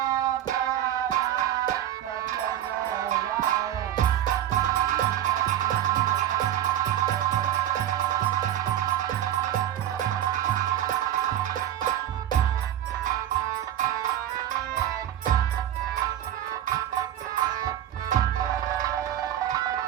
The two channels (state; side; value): quieter; left; 11.8 dB